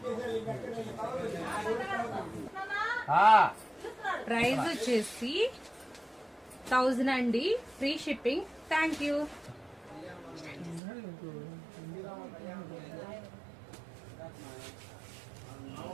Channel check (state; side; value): drops out; left; at 10.8 s